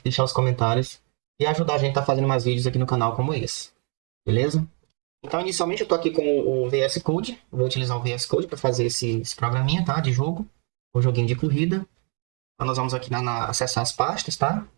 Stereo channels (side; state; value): left; quieter; 38.4 dB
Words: deixar os comentários e ajudar a gente a estar fazendo mais vídeos aqui no canal como esse. Beleza? Então, inicialmente, eu estou aqui com o VS Code. Vou utilizar o VS Code para fazer esse programinha, tá? De jogo, o joguinho de corrida. Então, nós vamos aqui acessar as pastas, tá?